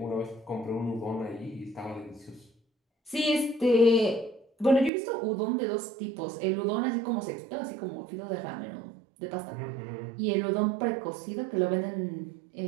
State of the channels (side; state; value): left; drops out; at 4.9 s